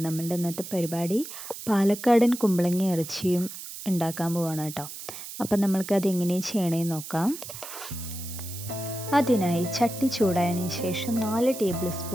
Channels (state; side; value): noise; right; hiss, 11 dB below the sound